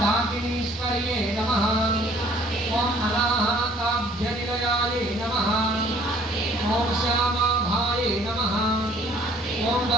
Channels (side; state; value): both; normal; correlation 0.57